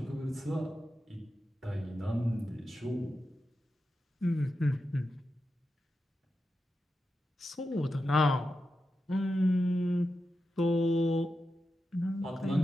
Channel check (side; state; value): both; normal; correlation 0.89